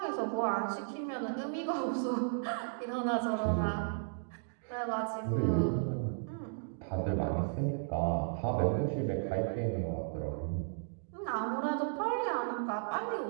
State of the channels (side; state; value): left; silent; digital silence